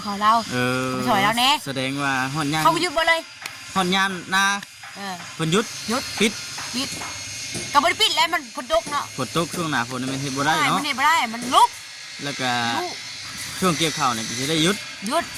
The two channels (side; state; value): both; identical; correlation 1.00